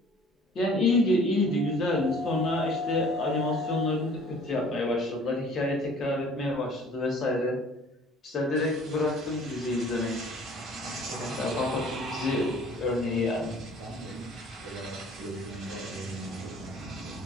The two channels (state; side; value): normal; both; correlation 0.52